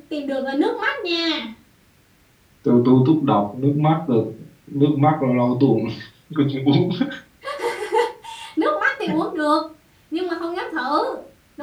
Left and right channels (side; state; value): both; identical; correlation 1.00